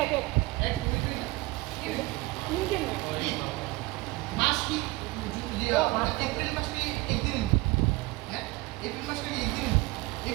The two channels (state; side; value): quieter; left; 21.9 dB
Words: এক দুই না তিনটে না মাস কি এপ্রিল মাস কি একদিন হ্যাঁ এপ্রিল মাস কি একদিন